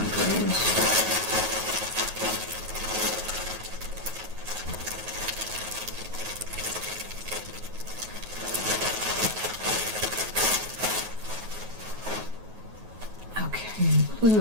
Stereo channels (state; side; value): late; left; 9.3 ms